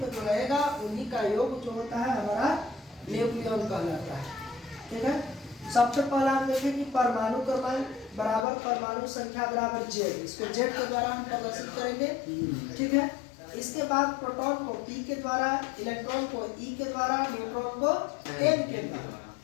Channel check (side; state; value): right; drops out; at 8.5 s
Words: में जो रहेगा उन्हीं का योग जो होता है हमारा न्यूक्लियन कहलाता है। ठीक है, सबसे पहला हम देखें कि परमाणु क्रमांक बराबर परमाणु संख्या बराबर जेड, इसको जेड के द्वारा हम प्रदर्शित करेंगे। ठीक है, इसके बाद प्रोटॉन को पी के द्वारा, इलेक्ट्रॉन को ई के द्वारा, न्यूट्रॉन को एन के द्वारा।